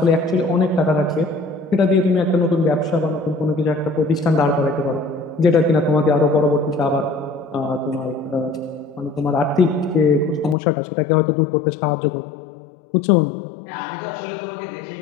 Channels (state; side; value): drops out; right; at 10.6 s